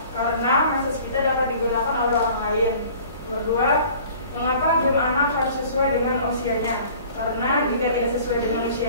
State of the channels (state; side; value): inverted; both; correlation -0.48